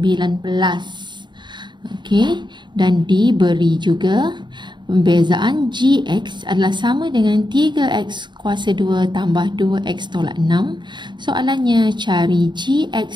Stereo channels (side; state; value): left; late; 0.22 ms